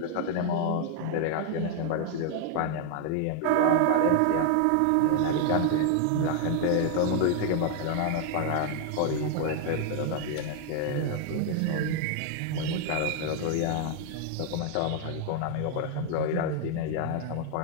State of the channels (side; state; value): both; different; correlation 0.00